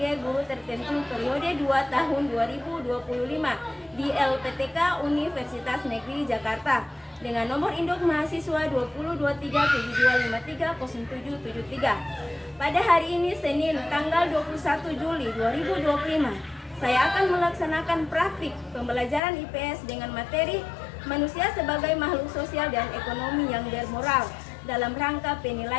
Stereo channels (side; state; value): right; drops out; at 19.2 s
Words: guru tertentu periode 2 tahun 2025 di LPTK Universitas Negeri Jakarta dengan nomor induk mahasiswa 202372530773. Pada hari ini Senin tanggal 21 Juli 2025, saya akan melaksanakan praktik pembelajaran IPS dengan materi manusia sebagai makhluk sosial dan ekonomi yang bermoral dalam rangka